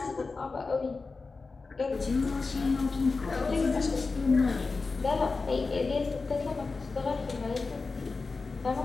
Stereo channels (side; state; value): right; quieter; 4.1 dB